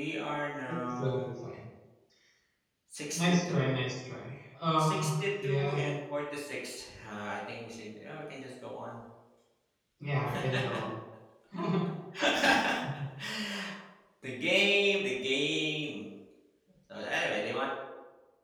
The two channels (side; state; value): both; identical; correlation 1.00